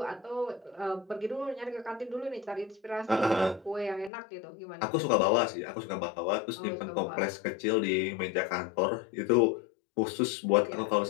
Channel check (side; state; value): right; drops out; at 4.1 s